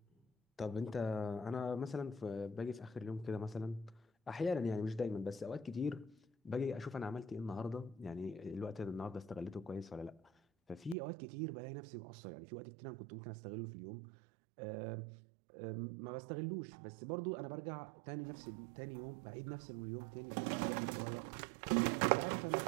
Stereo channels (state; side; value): drops out; left; at 11.0 s